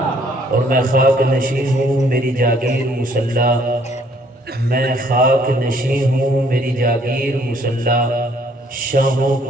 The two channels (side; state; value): both; normal; correlation 0.63